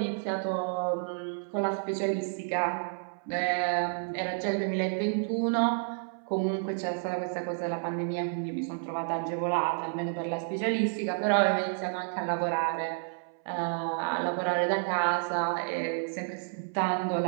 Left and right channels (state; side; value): silent; left; 58 dB below the other